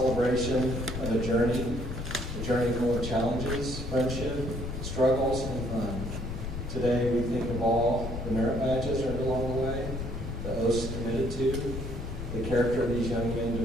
of a journey full of challenges, friendship, struggles, and fun. Today we think of all the merit badges earned along the way, the oaths committed to, the character of these young men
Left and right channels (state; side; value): noise; left; rumble, 6 dB below the sound